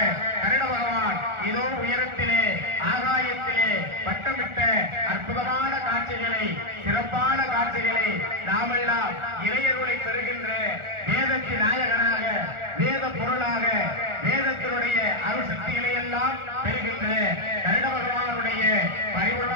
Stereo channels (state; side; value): late; left; 1.4 ms